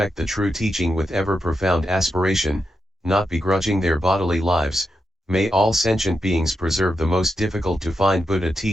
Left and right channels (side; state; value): both; normal; correlation 0.86